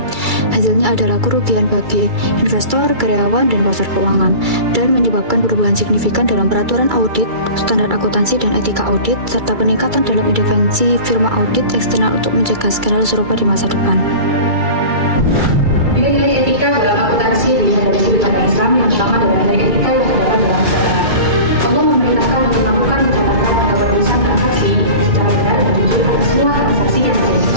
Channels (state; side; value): late; left; 2.3 ms